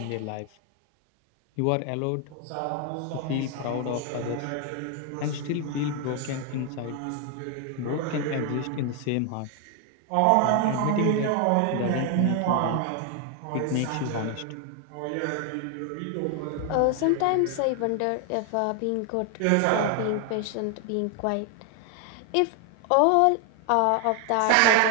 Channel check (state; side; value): different; both; correlation 0.00